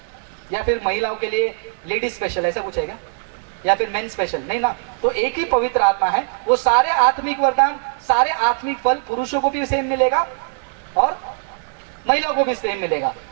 या फिर महिलाओं के लिए लेडीज स्पेशल, ऐसा कुछ है क्या? या फिर मेन स्पेशल? नहीं ना. तो एक ही पवित्र आत्मा है. वो सारे आत्मिक वरदान, सारे आत्मिक फल पुरुषों को भी सेम मिलेगा और महिलाओं को भी सेम मिलेगा.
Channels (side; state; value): left; silent; 65 dB below the other